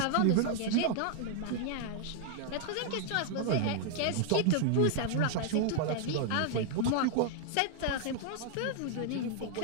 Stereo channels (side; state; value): both; different; correlation 0.00